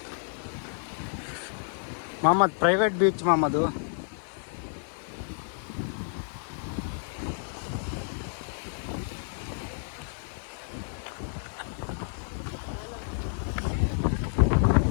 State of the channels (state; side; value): silent; right; 58 dB below the other